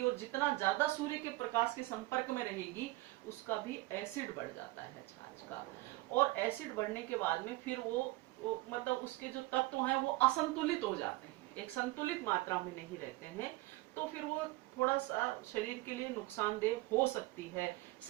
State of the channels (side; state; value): left; quieter; 20.2 dB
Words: और जितना ज्यादा सूर्य के प्रकाश के संपर्क में रहेगी उसका भी एसिड बढ़ जाता है छाछ का। और एसिड बढ़ने के बाद में फिर वो मतलब उसके जो तत्व हैं वो असंतुलित हो जाते हैं, एक संतुलित मात्रा में नहीं रहते हैं, तो फिर वो थोड़ा सा शरीर के लिए नुकसानदेह हो सकती है।